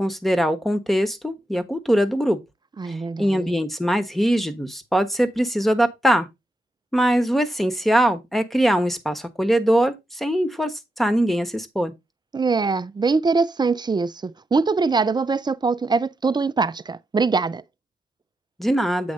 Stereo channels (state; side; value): normal; both; correlation 0.86